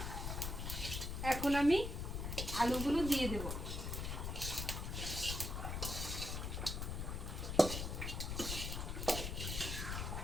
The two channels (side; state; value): left; noise; rumble, 3 dB below the sound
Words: এখন আমি আলুগুলো দিয়ে দেব।